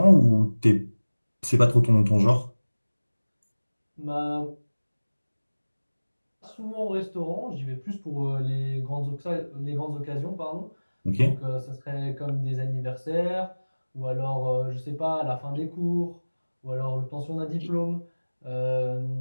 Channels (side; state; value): both; inverted; correlation -1.00